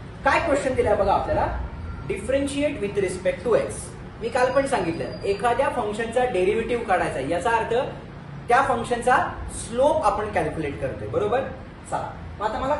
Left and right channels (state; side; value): identical; both; correlation 1.00